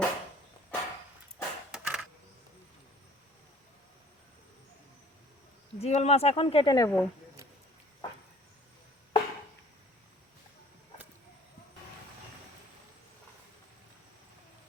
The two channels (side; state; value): both; normal; correlation 0.53